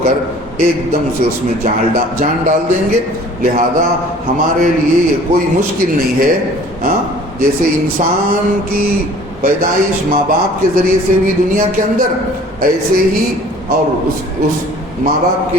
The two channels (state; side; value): normal; both; correlation 0.50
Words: کر ایک دم سے اس میں جان ڈال دیں گے. لہذا ہمارے لیے یہ کوئی مشکل نہیں ہے. جیسے انسان کی پیدائش ماں باپ کے ذریعے سے ہوئی دنیا کے اندر، ایسے ہی اور اس ماں باپ